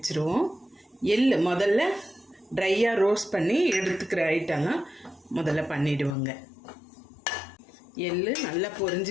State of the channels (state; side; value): drops out; right; at 6.1 s